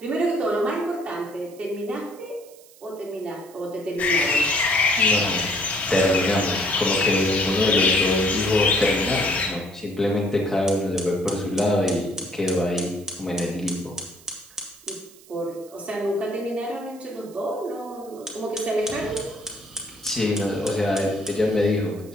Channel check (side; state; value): right; noise; hiss, 24 dB below the sound